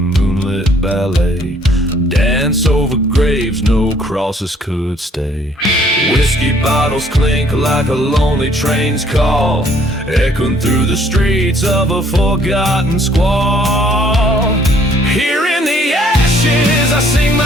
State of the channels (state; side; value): normal; both; correlation 0.61